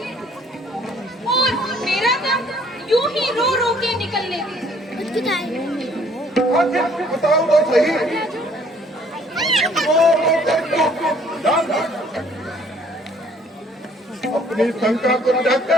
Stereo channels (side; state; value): both; normal; correlation 0.60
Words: और मेरा काम यूं ही रो रो के निकलने दीजिए। बताओ तो सही। अपनी शंका को